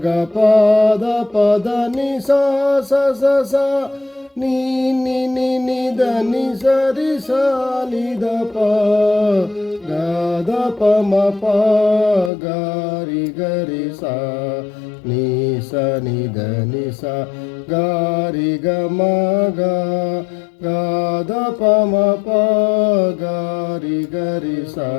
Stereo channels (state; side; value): drops out; right; at 12.3 s